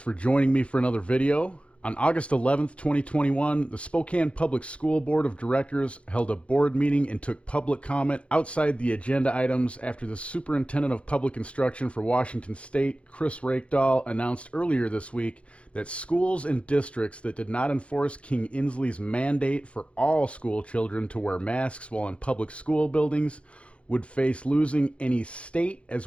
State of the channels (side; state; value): right; late; 0.061 ms